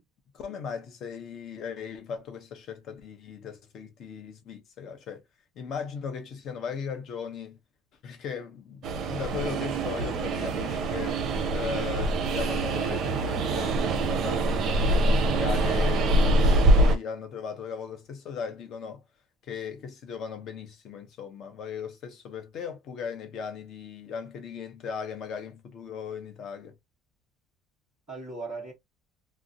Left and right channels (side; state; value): both; normal; correlation 0.50